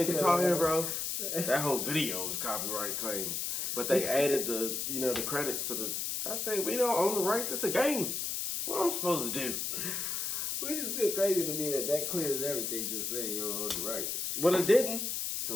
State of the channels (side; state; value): left; noise; hiss, 2 dB below the sound